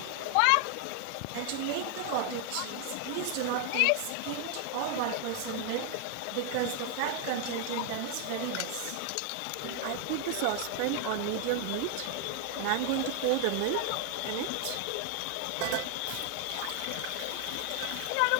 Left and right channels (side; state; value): both; different; correlation 0.00